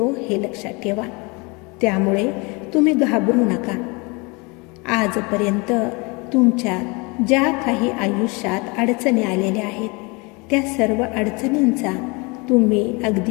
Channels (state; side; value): quieter; right; 28.3 dB